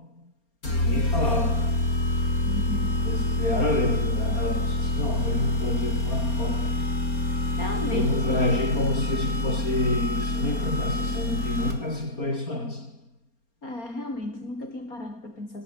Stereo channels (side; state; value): right; late; 4.3 ms